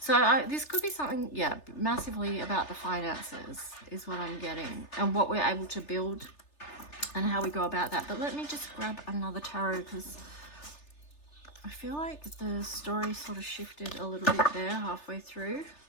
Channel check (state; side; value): late; right; 3.3 ms